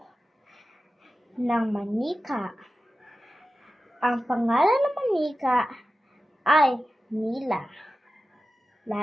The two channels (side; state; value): both; normal; correlation 0.93